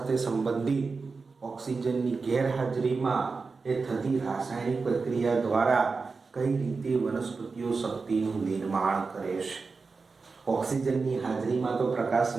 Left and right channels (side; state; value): left; quieter; 4.4 dB